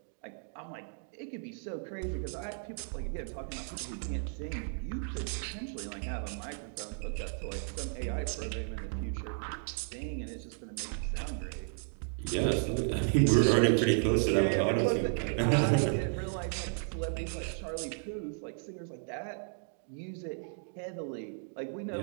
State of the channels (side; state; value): left; silent; 55 dB below the other